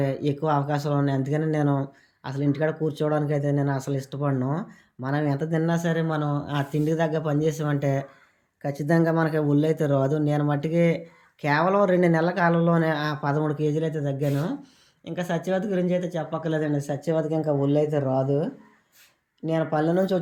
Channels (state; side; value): identical; both; correlation 1.00